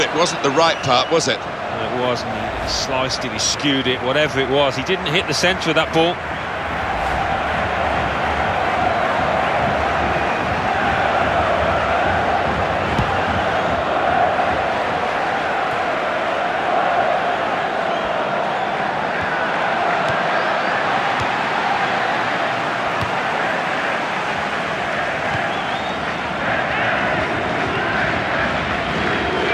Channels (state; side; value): identical; both; correlation 1.00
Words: it wasn't the right part, was it? It wasn't. He sliced it, he skewed it, whatever it was. He didn't hit the centre of that ball.